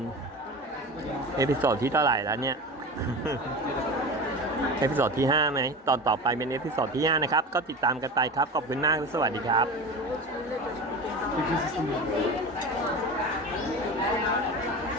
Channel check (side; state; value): both; normal; correlation 0.30